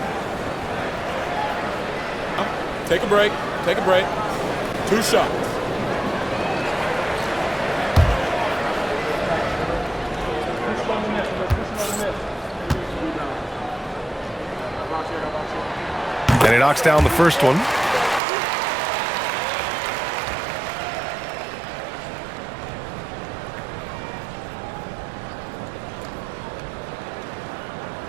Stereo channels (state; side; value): drops out; left; at 18.2 s